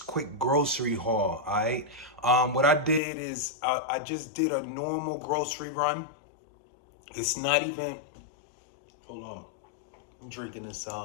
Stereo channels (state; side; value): drops out; right; at 3.0 s